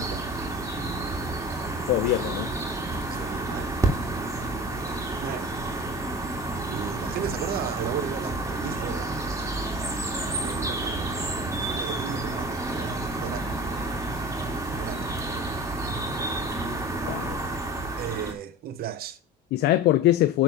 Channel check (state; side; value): normal; both; correlation 0.33